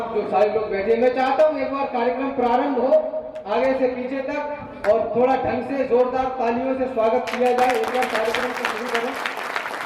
जो सारे लोग बैठे, मैं चाहता हूँ एक बार कार्यक्रम प्रारंभ हो आगे से पीछे तक और थोड़ा ढंग से जोरदार तालियों से स्वागत किया जाए। एक बार कार्यक्रम को शुरू करें।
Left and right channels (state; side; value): identical; both; correlation 1.00